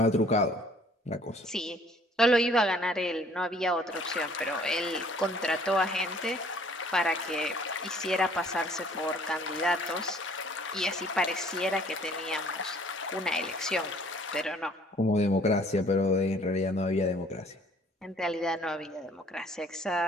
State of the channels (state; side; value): normal; both; correlation 0.57